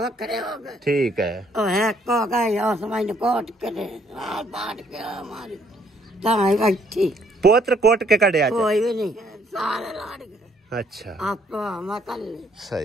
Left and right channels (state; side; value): normal; both; correlation 0.66